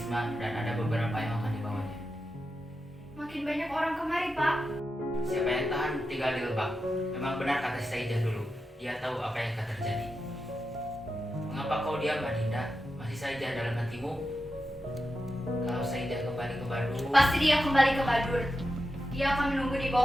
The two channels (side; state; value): both; normal; correlation 0.89